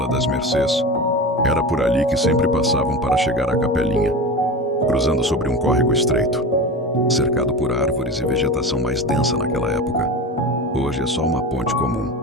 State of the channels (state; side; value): normal; both; correlation 0.29